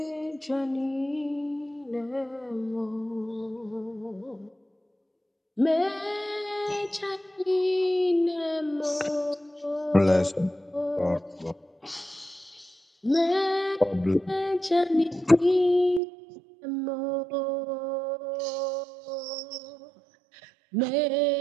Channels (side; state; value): left; drops out; at 16.0 s